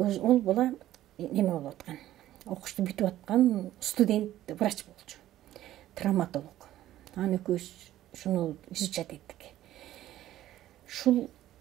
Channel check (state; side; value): quieter; left; 13.7 dB